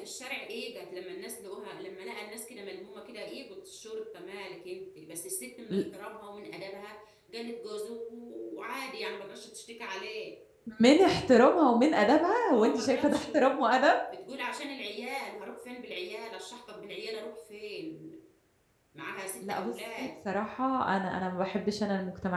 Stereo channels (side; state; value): both; identical; correlation 1.00